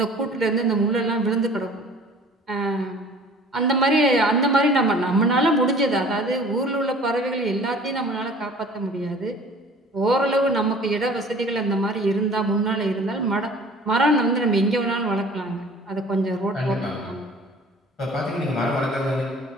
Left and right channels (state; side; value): normal; both; correlation 0.48